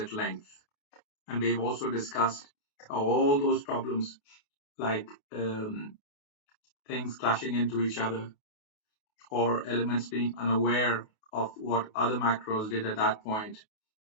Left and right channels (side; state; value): right; late; 28 ms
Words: length. And we've also discussed how all those problems, like things clashing into each other or elements being unaware of what other macros did at that point,